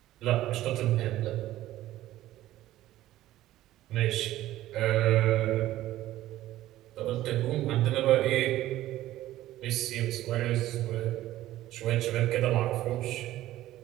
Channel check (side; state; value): left; quieter; 14.7 dB